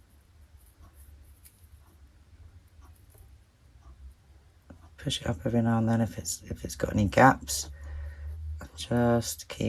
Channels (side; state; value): both; identical; correlation 1.00